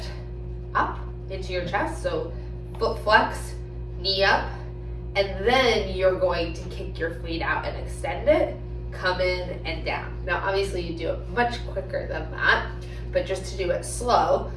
up into your chest, so foot flex, knee up, and then you're going to kick your feet out and extend it, come in and down. Now obviously you do it much quicker than that, but just to do it slow,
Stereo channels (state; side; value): identical; both; correlation 1.00